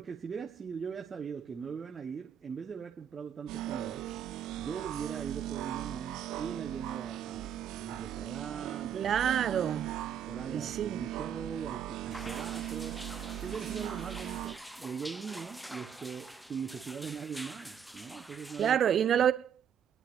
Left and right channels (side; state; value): left; quieter; 8.4 dB